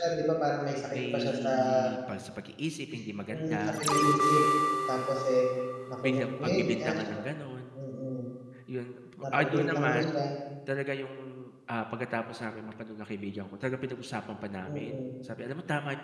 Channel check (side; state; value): both; identical; correlation 1.00